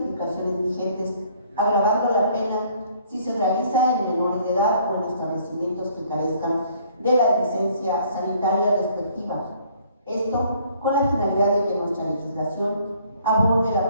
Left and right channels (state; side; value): inverted; both; correlation -0.60